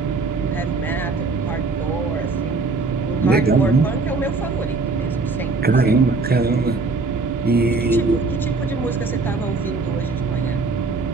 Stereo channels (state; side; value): quieter; left; 3.9 dB